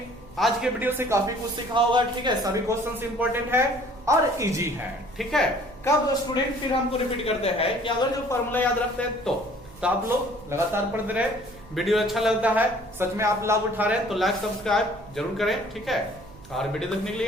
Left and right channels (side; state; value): right; noise; hum, 21 dB below the sound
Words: आज के वीडियो से काफी कुछ सीखा होगा। ठीक है, सभी क्वेश्चंस इंपॉर्टेंट है और इजी है। ठीक है, कब स्टूडेंट फिर हमको रिपीट करते हैं कि अगर जो फॉर्मूला याद रखते हैं तो आप लोग लगातार पढ़ते रहे। वीडियो अच्छा लगता है, सच में आप लाभ उठा रहे हैं तो लाइक सब्सक्राइब जरूर करें। ठीक है, और वीडियो देखने के लिए